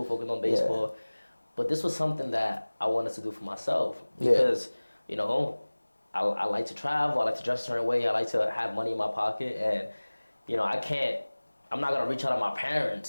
focus on baseball. Yeah. But this was something that I wanted to do for myself because I like to travel, I like to dress a certain way, I like to have money in my pocket, and I'm not gonna reach out to my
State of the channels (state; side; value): inverted; both; correlation -1.00